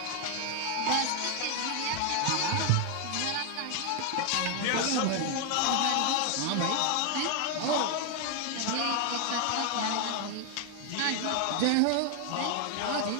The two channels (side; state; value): both; different; correlation 0.00